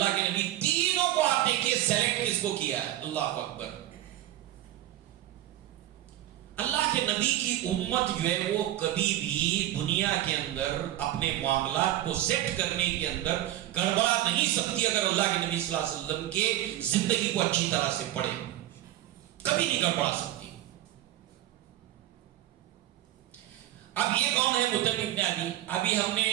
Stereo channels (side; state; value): left; quieter; 14.0 dB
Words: کے نبی تینوں کو آپ دیکھیے سیلیکٹ کس کو کیا ہے. اللہ اکبر. اللہ کے نبی کی امت جو ہے وہ کبھی بھی دنیا کے اندر اپنے معاملات کو سیٹ کرنے کے اندر گڑبڑا نہیں سکتی اگر اللہ کے نبی صلی اللہ علیہ وسلم کے زندگی کو اچھی طرح سے پڑھے. کبھی نہیں گڑبڑا سکتی. اب یہ کون ہے مطعم بن عدی؟ ابھی ہم نے